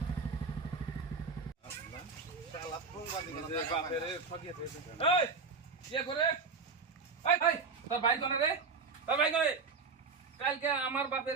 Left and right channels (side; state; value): left; quieter; 4.8 dB